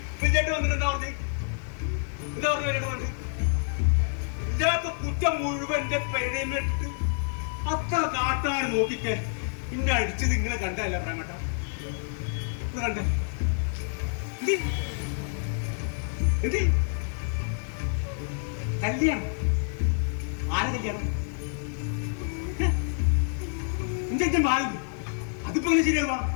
വിജയേട്ട് വന്നിട്ട് എന്താ പറഞ്ഞു വിജയേട്ട് പറഞ്ഞു ഇല്ലാത്ത കുറ്റം മുഴുവൻ എന്റെ പെരേമിട്ട് അത്ര കാട്ടാൻ നോക്കിക്കെ ഇന്നെ അടിച്ചത് ഇങ്ങനെ കണ്ടല്ല പ്രേമട്ട കണ്ട എന്ത് കല്യാണം ആരെ കല്യാണം എന്റെ ബാലു അതിപ്പോ എങ്ങനെ ശരിയാവാ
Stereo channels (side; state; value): right; silent; 56 dB below the other